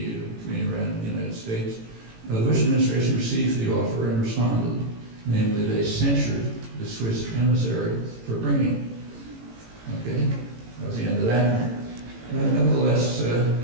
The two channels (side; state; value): left; late; 18 ms